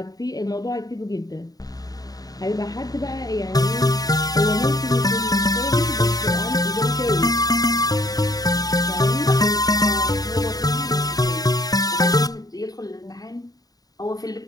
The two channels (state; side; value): late; right; 0.18 ms